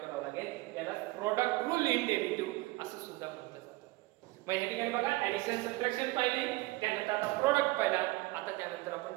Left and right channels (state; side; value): quieter; left; 20.9 dB